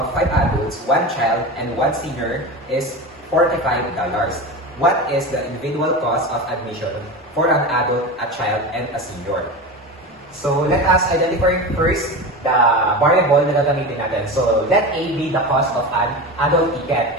5 adults, 1 child, and 1 senior is $45. What is the individual cost of admission for an adult, a child, and a senior? So, let us identify first the variable na gagamitin natin. So, let A be the cost of an adult ticket,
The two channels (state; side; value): normal; both; correlation 0.26